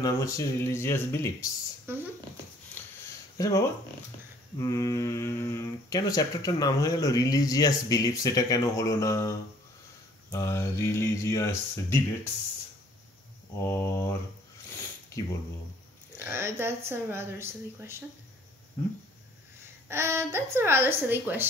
নাম হচ্ছে রিলিজিয়াস বিলিফস। আচ্ছা বাবা, কেন চ্যাপ্টারটার নাম হয়ে গেল রিলিজিয়াস বিলিফস? এটা কেন হলো না রিলিজিয়াস ডিবেটস অর কি বলবো? That's a rather silly question. That's a rather silly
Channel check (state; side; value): normal; both; correlation 0.58